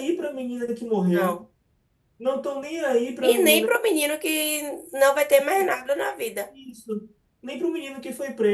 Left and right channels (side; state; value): both; identical; correlation 1.00